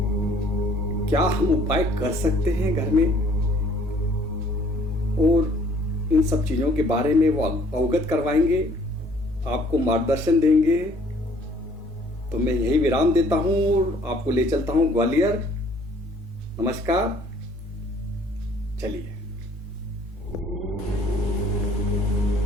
क्या हम उपाय कर सकते हैं घर में, और इन सब चीजों के बारे में वो अवगत करवाएंगे, आपको मार्गदर्शन देंगे। तो मैं यही विराम देता हूं और आपको ले चलता हूं ग्वालियर। नमस्कार, चलिए।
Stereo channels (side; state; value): both; normal; correlation 0.58